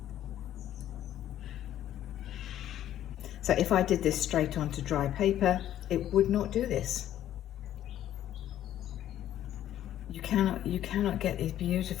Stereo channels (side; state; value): right; quieter; 11.9 dB